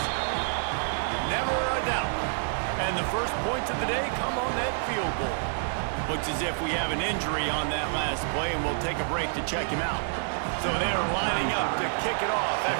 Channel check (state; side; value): silent; left; digital silence